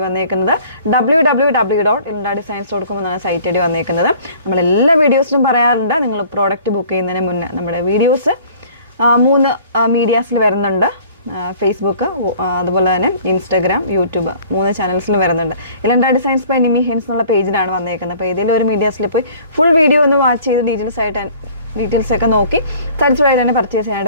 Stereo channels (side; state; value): both; inverted; correlation -0.51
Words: വന്നേക്കുന്നത് www.ilandadesigns.com എന്നാണ് സൈറ്റ് ഐ ഡി വന്നേക്കുന്നത്. നമ്മളെല്ലാ വീഡിയോസിലും പറയാറുണ്ട്, നിങ്ങൾ പ്രോഡക്റ്റ് ബുക്ക് ചെയ്യുന്നതിന് മുന്നേ നമ്മുടെ വീഡിയോസ് 3 മീഡിയാസിൽ വരുന്നുണ്ട്. ഫേസ്ബുക്ക്, അതുപോലെ തന്നെ ഇൻസ്റ്റാഗ്രാം, യൂട്യൂബ് 3 ചാനൽസിലും വരുന്നുണ്ട്. ഇലണ്ട ഡിസൈൻസ് ബൈ നിമി ഹെൻസ് എന്നുള്ള പേജിലാണ് വന്നേക്കുന്നത്. അപ്പോൾ ഏതെങ്കിലും ഒരു മീഡിയാസിൽ പോയി ഫുൾ വീഡിയോ ഒന്ന് വാച്ച് ചെയ്ത് ഡീറ്റെയിൽസ് ഒക്കെ നോക്കി സാറ്റിസ്ഫൈഡ് ആയിട്ട് തന്നെ പർച്ചേസ്